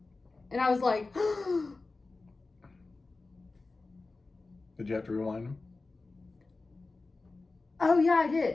And I was like, Did you have to rewind them? oh yeah, I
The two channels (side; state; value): right; quieter; 3.6 dB